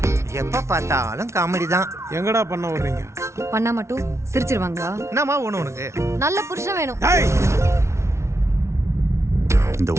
எப்ப பார்த்தாலும் காமெடி தான். எங்கடா பண்ண வர்றீங்க? பண்ணா மட்டும் சிரிச்சிருவாங்களா? என்னம்மா ஒண்ணு உனக்கு? நல்ல புருஷன் வேணும். டேய், இந்த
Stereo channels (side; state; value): left; late; 0.13 ms